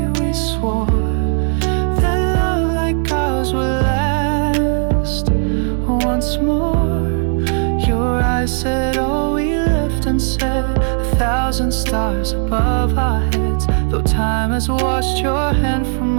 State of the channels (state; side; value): silent; left; 56 dB below the other